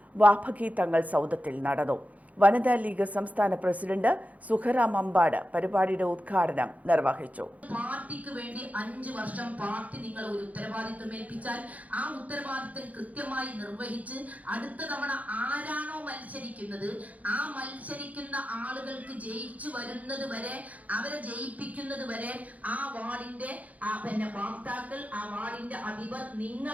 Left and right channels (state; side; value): late; left; 0.072 ms